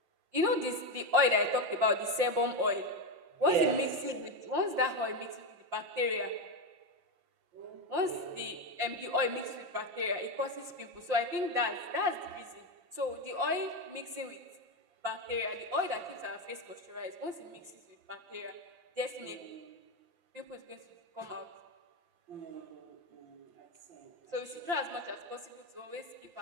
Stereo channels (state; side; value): late; left; 5.7 ms